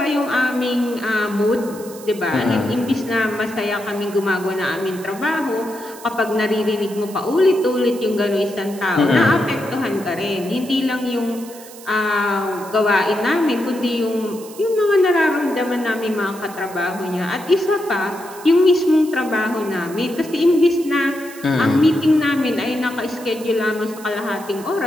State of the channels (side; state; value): right; noise; hiss, 18 dB below the sound